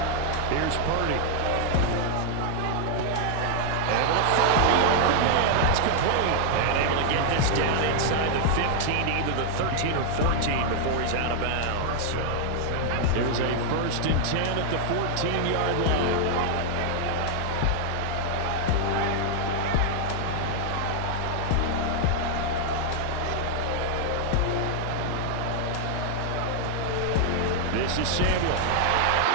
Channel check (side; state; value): both; different; correlation 0.00